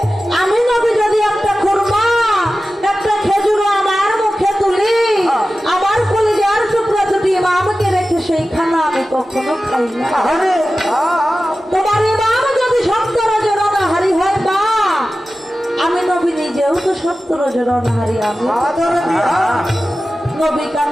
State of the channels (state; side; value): normal; both; correlation 0.95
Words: আমি নবী যদি একটা খুরমা একটা খেজুর আমার মুখে তুলি আমার কলিজার টুকরা দুটি ইমামকে রেখে সেই খানা আমি কখনো খাই না তোমার ইমাম যদি 70 জোড়া হাড়ি হয় মা আমি নবী নিজেও তো 70 জোড়া হাড়ি আমি নবী